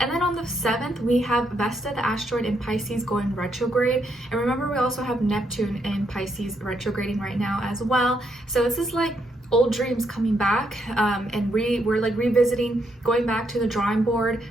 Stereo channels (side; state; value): both; normal; correlation 0.76